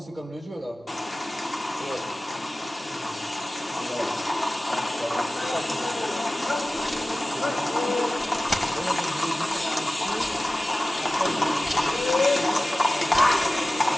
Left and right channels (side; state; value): both; normal; correlation 0.96